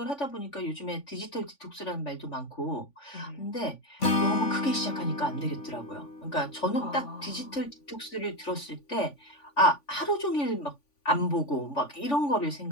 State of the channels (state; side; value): late; right; 3.5 ms